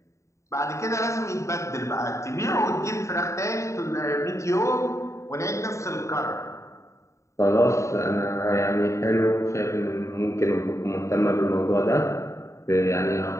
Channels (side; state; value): right; late; 0.14 ms